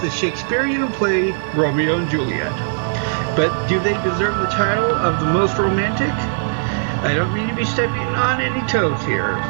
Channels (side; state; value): left; silent; 60 dB below the other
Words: Shakespearean play Romeo and Juliet. But do they deserve the title of the most romantic? I don't mean to be stepping on any toes here.